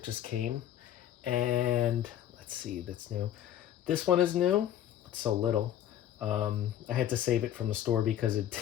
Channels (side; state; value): right; quieter; 11.4 dB